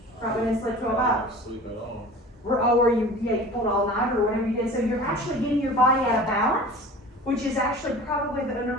Probably didn't sleep 12 hours. Sleep at all. Or you pulled all night or whatever you did. So you're actually getting your body out of balance, which is actually probably the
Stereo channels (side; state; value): both; normal; correlation 0.40